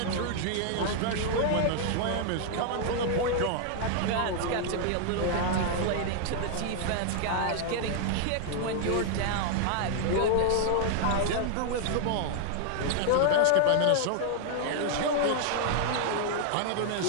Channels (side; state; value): both; different; correlation 0.00